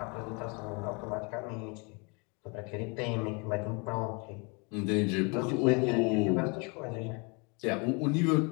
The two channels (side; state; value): right; quieter; 32.1 dB